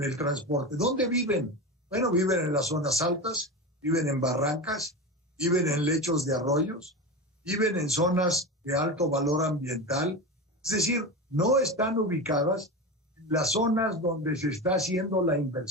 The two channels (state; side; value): normal; both; correlation 0.23